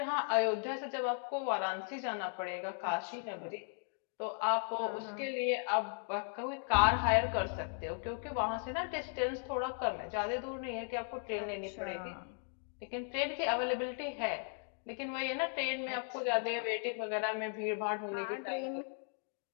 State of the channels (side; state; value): right; silent; 53 dB below the other